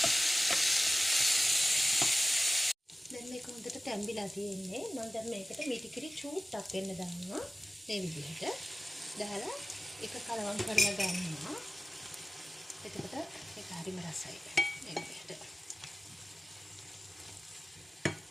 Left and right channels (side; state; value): both; normal; correlation 0.96